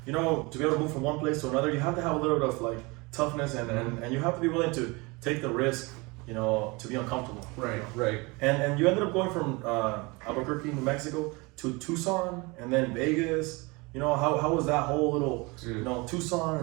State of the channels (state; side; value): quieter; left; 26.1 dB